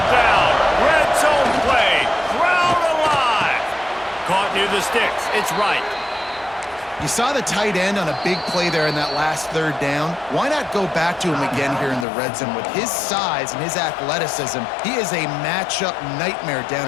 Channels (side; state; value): right; drops out; at 12.1 s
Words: down, red zone play, crowd alive. Caught near the sticks, it's right. You saw the tight end on a big play there in that last third down. Why not go back to him again here in the red zone? With his size and his athleticism, he is a matchup nightmare down